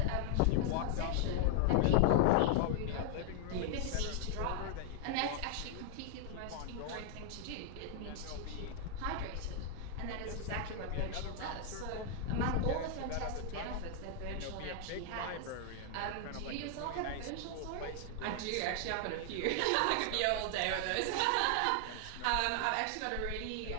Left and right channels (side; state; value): both; different; correlation 0.00